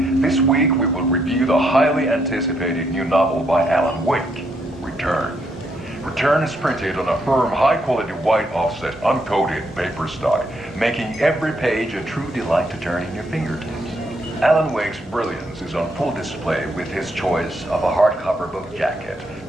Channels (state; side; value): normal; both; correlation 0.75